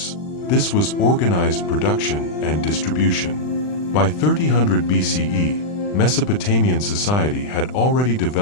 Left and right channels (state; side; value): late; right; 39 ms